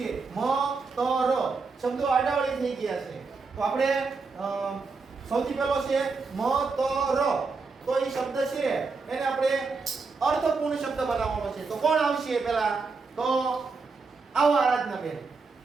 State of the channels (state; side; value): quieter; left; 4.4 dB